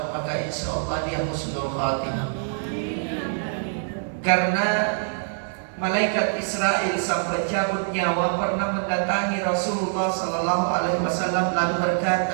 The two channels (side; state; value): left; silent; digital silence